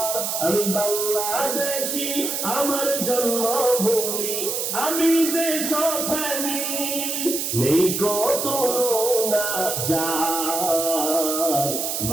আমি বাংলাদেশী, আমার জন্মভূমি, আমি দেশপ্রেমী, নেই কত না যার।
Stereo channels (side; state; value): right; noise; hiss, 2 dB below the sound